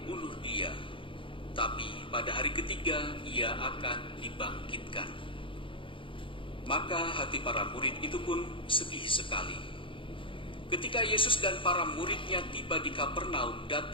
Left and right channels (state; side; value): late; right; 0.25 ms